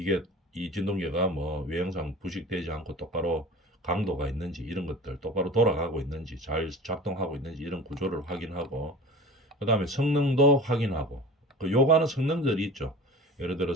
이 진동계가 뭐 외형상 부식되지 않고 똑바로 강도가 있는지 이런 것들 똑바로 돌아가고 있는지 잘 작동하고 있는지 이런 구조를 확인하고, 그 다음에 성능도 확인하고, 그 요구하는 성능들이 있죠. 예를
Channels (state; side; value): normal; both; correlation 0.38